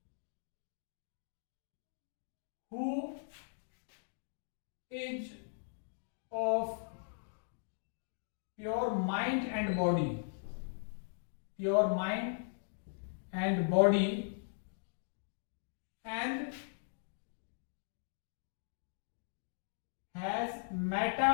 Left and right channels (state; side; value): silent; right; digital silence